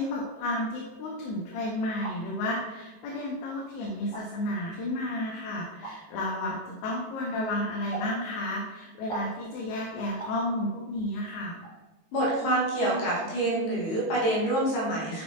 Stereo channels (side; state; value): right; late; 18 ms